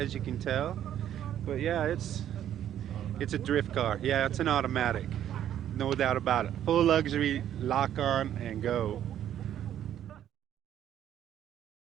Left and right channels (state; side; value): quieter; left; 10.8 dB